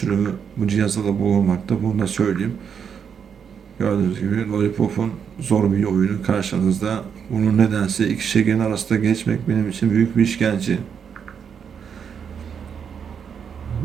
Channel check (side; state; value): left; quieter; 7.3 dB